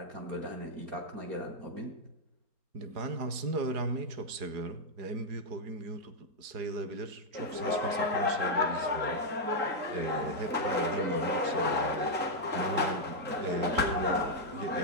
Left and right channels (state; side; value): late; left; 4.8 ms